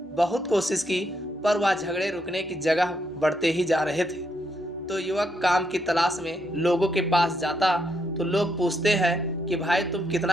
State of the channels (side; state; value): both; normal; correlation 0.77